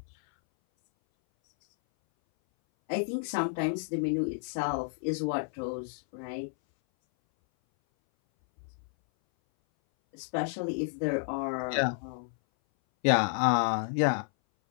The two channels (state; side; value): silent; right; 57 dB below the other